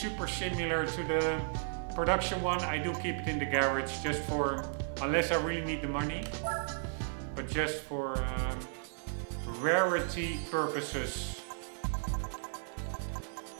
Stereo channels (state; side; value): silent; left; digital silence